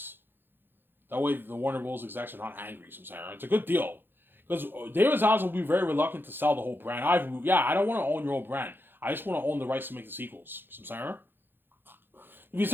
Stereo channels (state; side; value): late; left; 0.10 ms